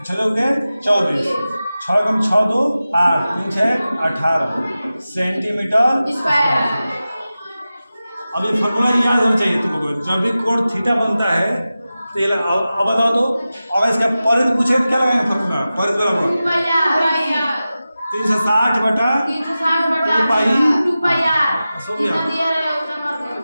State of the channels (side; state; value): both; inverted; correlation -0.94